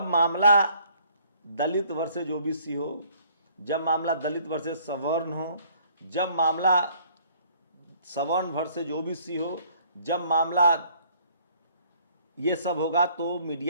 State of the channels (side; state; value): both; inverted; correlation -0.60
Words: मामला दलित वर्सेज ओबीसी हो, जब मामला दलित वर्सेज सवर्ण हो, जब मामला सवर्ण वर्सेज ओबीसी हो, जब मामला ये सब होगा, तो